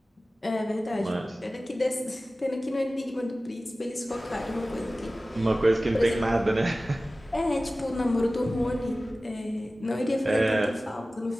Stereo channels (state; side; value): normal; both; correlation 0.96